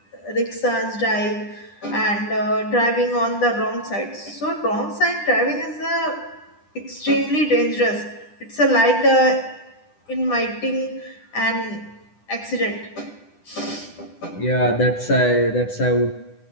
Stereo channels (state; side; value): late; right; 10 ms